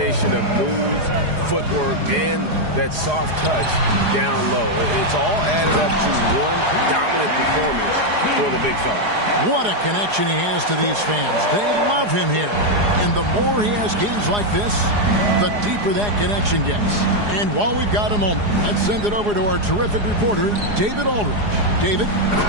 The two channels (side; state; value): left; late; 4.8 ms